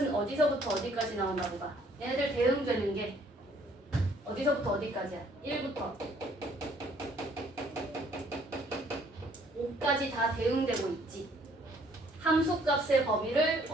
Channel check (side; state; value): both; normal; correlation 0.62